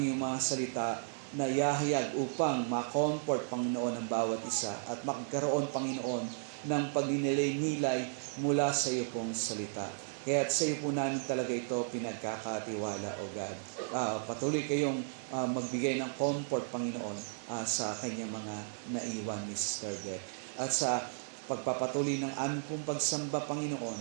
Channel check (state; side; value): silent; left; digital silence